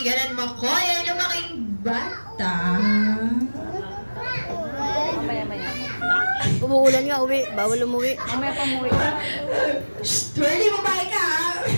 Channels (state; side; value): inverted; both; correlation -1.00